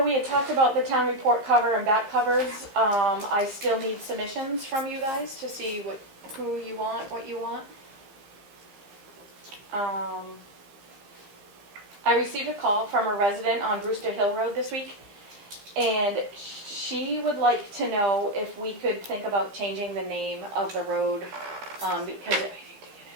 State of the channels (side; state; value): left; late; 15 ms